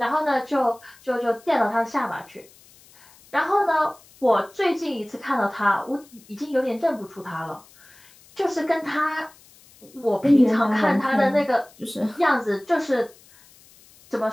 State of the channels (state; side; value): noise; left; hiss, 26 dB below the sound